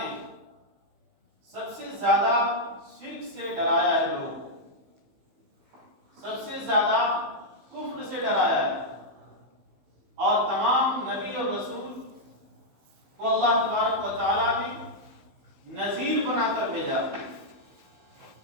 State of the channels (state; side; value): late; left; 15 ms